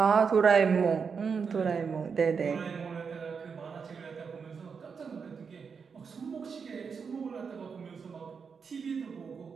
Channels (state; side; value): quieter; left; 5.9 dB